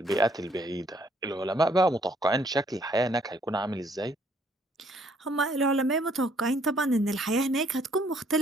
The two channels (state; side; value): normal; both; correlation 0.65